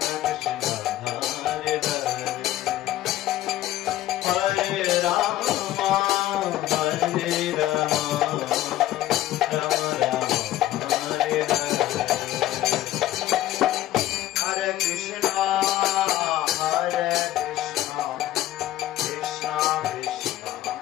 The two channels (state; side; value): quieter; right; 14.2 dB